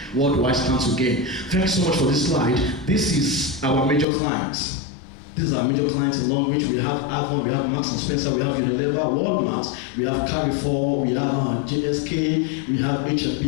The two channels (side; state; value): right; drops out; at 4.0 s